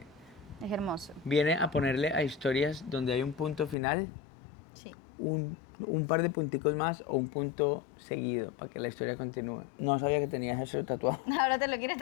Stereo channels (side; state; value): right; drops out; at 3.8 s